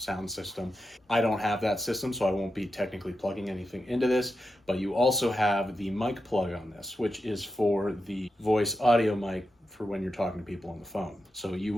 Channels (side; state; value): both; normal; correlation 0.89